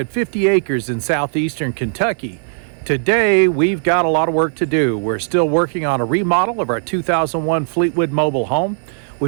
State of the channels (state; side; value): silent; left; 64 dB below the other